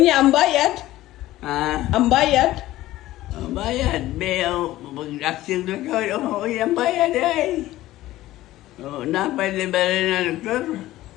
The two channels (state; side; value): quieter; right; 15.8 dB